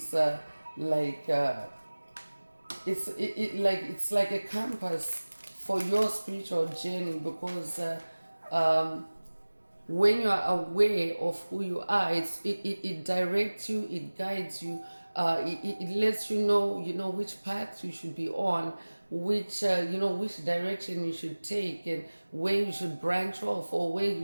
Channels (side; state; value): both; inverted; correlation -1.00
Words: it's like a compass for your spiritual journey. Because when you are aware of who you are, it directs you, it guides you, it lets you know which path you should be on, which which direction you should take, and where you should branch off, or where you